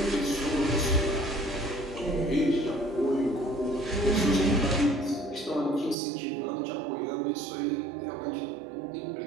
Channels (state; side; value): drops out; left; at 6.0 s